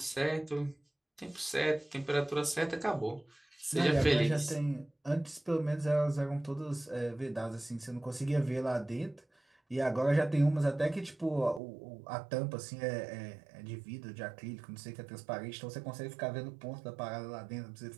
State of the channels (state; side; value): drops out; left; at 11.6 s